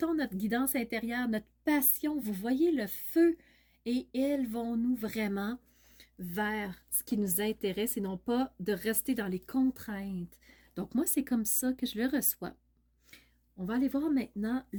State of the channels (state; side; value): identical; both; correlation 1.00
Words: notre guidance intérieure, notre passion. Vous voyez le feu et élevons-nous vraiment vers ce qui nous intéresse et non pas de rester dans les contraintes. Donc, moi, c'est comme ça que je le reçois. On va aller voir maintenant